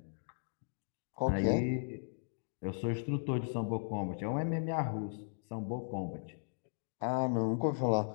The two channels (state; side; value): silent; right; digital silence